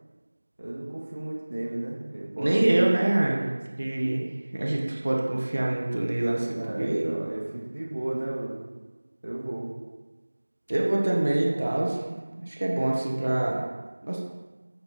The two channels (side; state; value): both; inverted; correlation -1.00